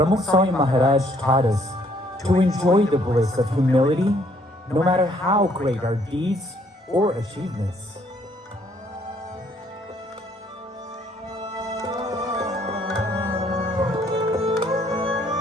Swami Maharaj taught us to enjoy the bliss of humility no matter how great our deeds or achievements.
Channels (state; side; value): normal; both; correlation 0.65